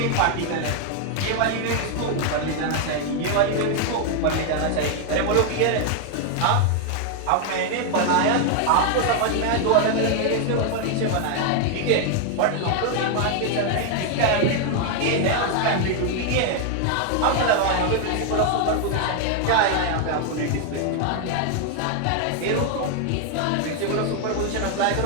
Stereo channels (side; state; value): both; different; correlation 0.00